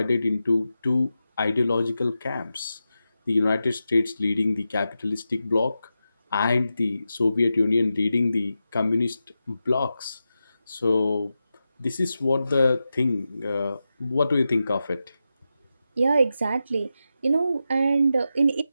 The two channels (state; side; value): inverted; both; correlation -0.91